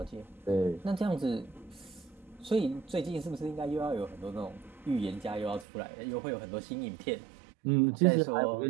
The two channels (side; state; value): left; drops out; at 5.7 s